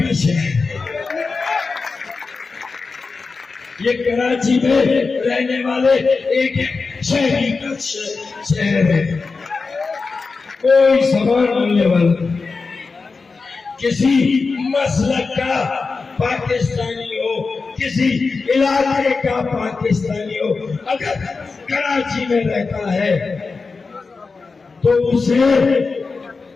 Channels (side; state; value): right; quieter; 4.4 dB